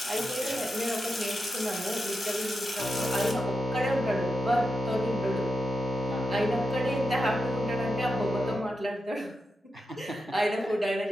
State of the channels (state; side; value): normal; both; correlation 0.88